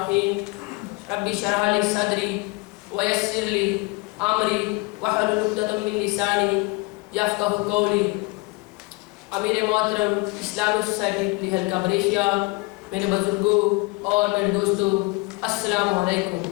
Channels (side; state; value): right; quieter; 25.6 dB